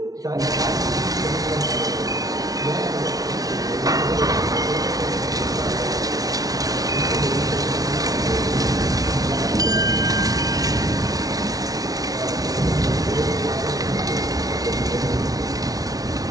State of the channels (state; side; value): late; left; 0.18 ms